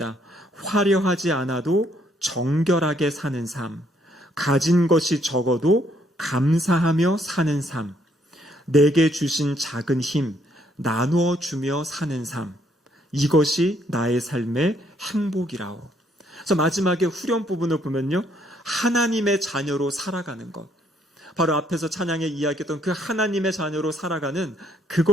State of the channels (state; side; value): normal; both; correlation 0.69